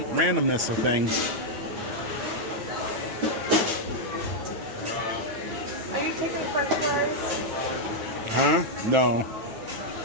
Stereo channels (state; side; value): late; left; 9.1 ms